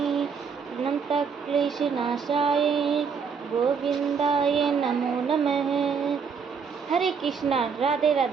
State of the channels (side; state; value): left; quieter; 6.1 dB